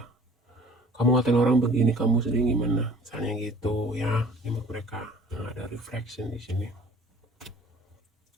kamu ngatain orang begini, kamu sedih gimana, misalnya gitu ya. Ini menurut mereka. Nah, ada reflection di sini,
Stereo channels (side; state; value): both; normal; correlation 0.50